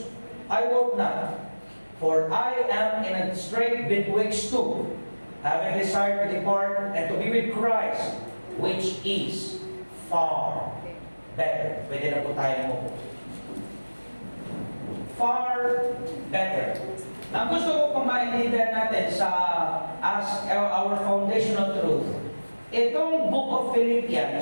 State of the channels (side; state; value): both; inverted; correlation -1.00